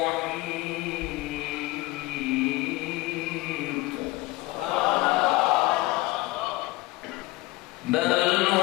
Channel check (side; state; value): right; quieter; 20.3 dB